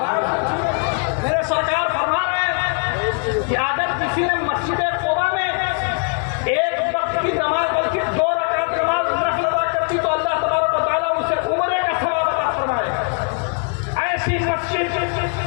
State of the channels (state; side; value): quieter; right; 36.7 dB